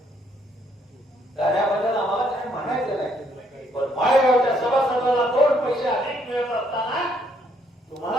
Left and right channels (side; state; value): both; normal; correlation 0.69